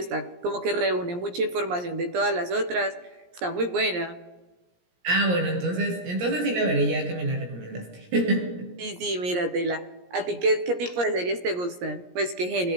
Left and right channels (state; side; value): late; left; 17 ms